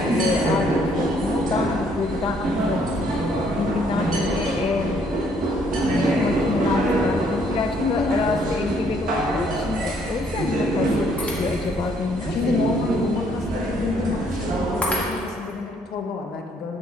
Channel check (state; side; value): normal; both; correlation 0.66